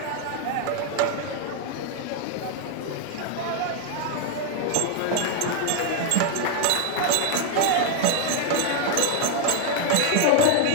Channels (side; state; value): both; different; correlation 0.00